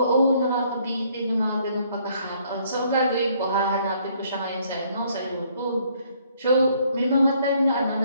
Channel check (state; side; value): inverted; both; correlation -0.65